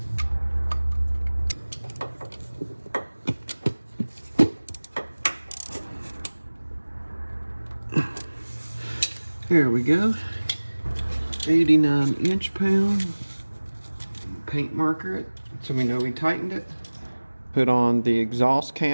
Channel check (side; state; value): both; inverted; correlation -1.00